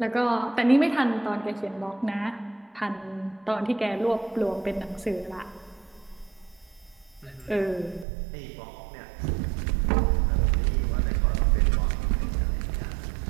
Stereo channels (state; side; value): drops out; left; at 8.1 s